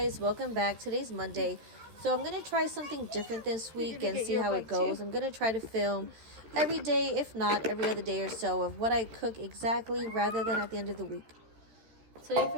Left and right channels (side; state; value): left; late; 13 ms